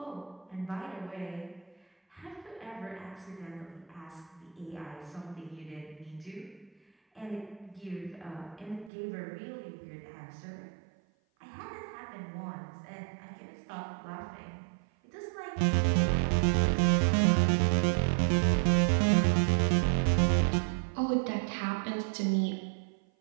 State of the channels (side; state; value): left; drops out; at 8.9 s